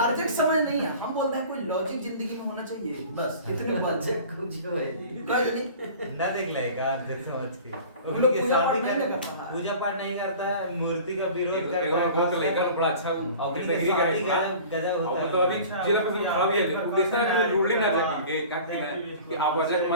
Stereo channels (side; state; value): both; inverted; correlation -0.42